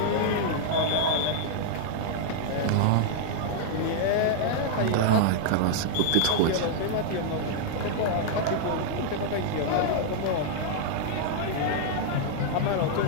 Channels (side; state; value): both; different; correlation -0.01